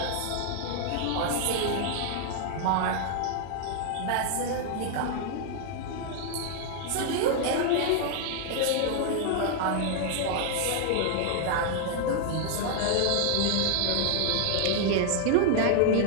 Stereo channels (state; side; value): different; both; correlation 0.00